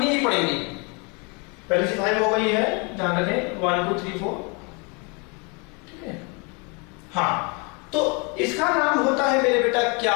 ही पड़ेगी। पहले से 5 हो गई है, ध्यान रखें 1 2 3 4, ठीक है। हाँ, तो इसका नाम होता है मेरे बेटा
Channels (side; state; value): right; quieter; 32.2 dB